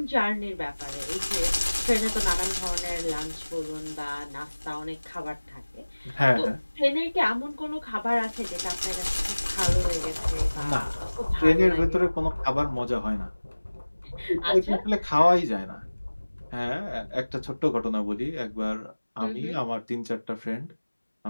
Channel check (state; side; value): inverted; both; correlation -1.00